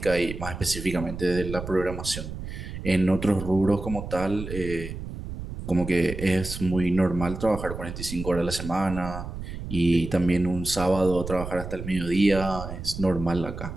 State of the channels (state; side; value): noise; right; rumble, 8 dB below the sound